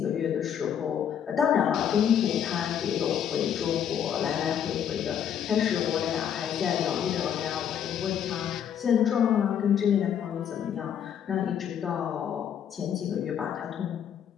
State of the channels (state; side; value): quieter; right; 8.8 dB